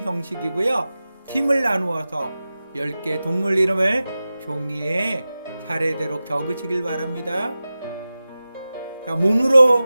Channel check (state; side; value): inverted; both; correlation -0.95